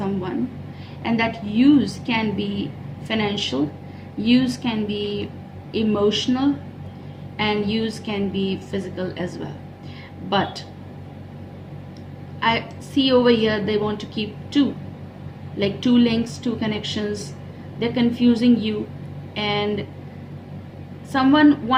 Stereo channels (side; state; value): both; identical; correlation 1.00